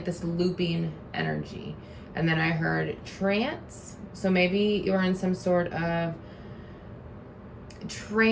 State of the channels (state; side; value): identical; both; correlation 1.00